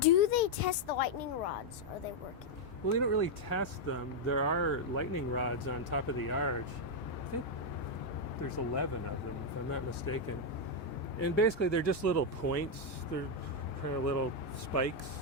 they test the lightning rods? Are they working? Well, they don't really test them. There are lightning rods on top of the arch. I think there's 11 of them, if I'm not mistaken. And basically, they're just little points. They're kind of little spikes.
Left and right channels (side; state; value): both; normal; correlation 0.00